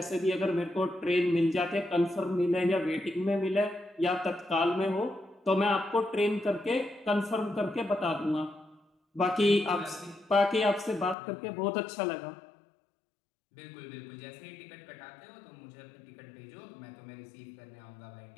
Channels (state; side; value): drops out; right; at 11.2 s